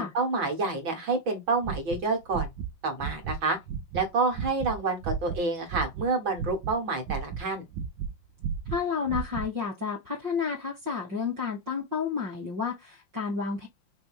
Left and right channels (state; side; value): late; left; 6.2 ms